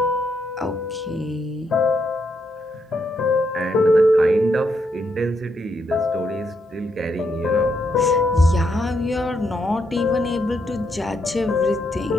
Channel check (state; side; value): normal; both; correlation 0.78